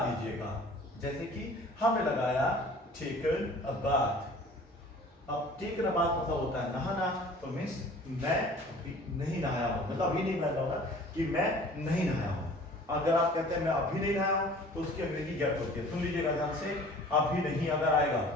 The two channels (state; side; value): normal; both; correlation 0.47